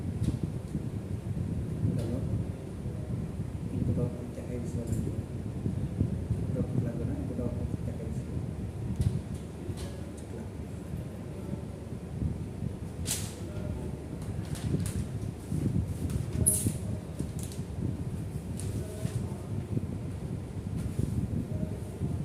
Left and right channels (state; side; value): identical; both; correlation 1.00